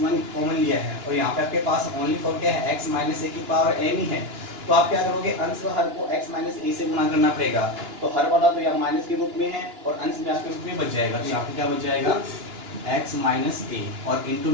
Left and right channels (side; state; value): left; late; 2.9 ms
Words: कॉमन लिया है और यहाँ पे आपके पास ओनली फॉर क्या है x माइनस ए की पावर n ही है। तो आप क्या करोगे अंश व हर को x माइनस ए से गुणा करना पड़ेगा, तो हर वाला तो यहाँ माइनस के रूप में है और अंश भी आपके रूप में बच जाएगा। तो यहाँ पे क्या बच जाएगा x माइनस ए और इंटू